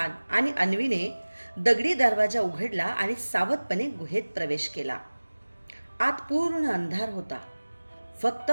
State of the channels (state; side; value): inverted; both; correlation -1.00